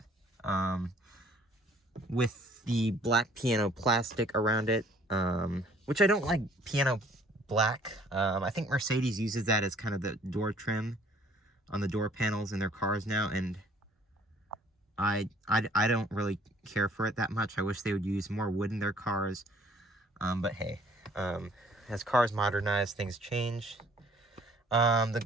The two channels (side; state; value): both; normal; correlation 0.58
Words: with the black piano plastic around it, which I don't like piano black. I think Mercedes uses that as kind of the door trim on the door panels in their cars now, and I don't really care for it that much. I wish they would use more wood in their cars, but hey. As cars modernize, things change. Let